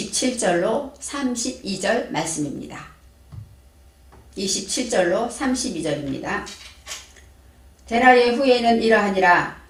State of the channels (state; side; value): identical; both; correlation 1.00